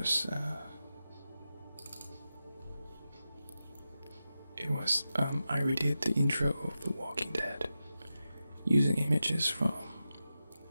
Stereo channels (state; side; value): inverted; both; correlation -0.91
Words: I redid the intro of The Walking Dead using images from